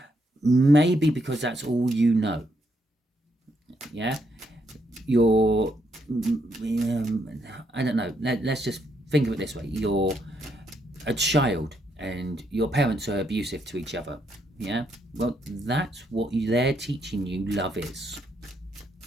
Maybe because that's all you know. Yeah? You're... I don't know. Let's just think of it this way. You're a child and your parents are abusive to each other. Yeah, well, that's what they're teaching you love is.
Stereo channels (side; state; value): both; normal; correlation 0.76